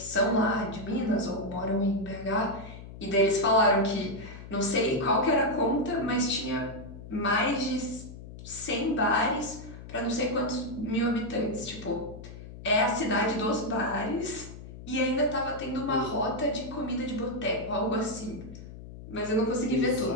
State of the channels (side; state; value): left; noise; hum, 14 dB below the sound